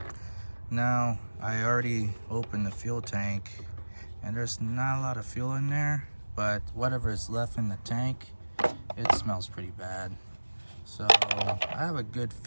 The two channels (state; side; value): inverted; both; correlation -1.00